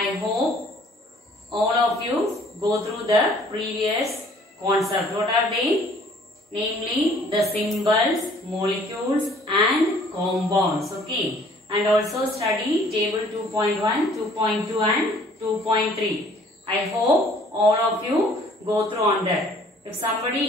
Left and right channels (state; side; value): normal; both; correlation 0.56